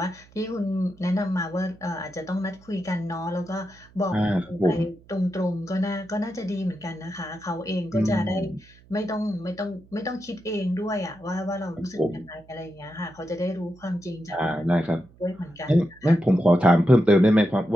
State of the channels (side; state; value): right; noise; hum, 26 dB below the sound